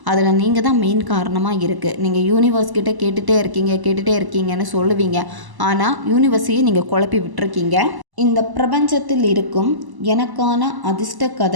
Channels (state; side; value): late; left; 1.0 ms